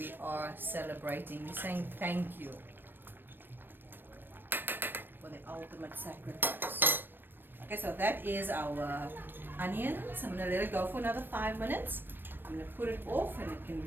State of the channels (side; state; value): left; late; 0.095 ms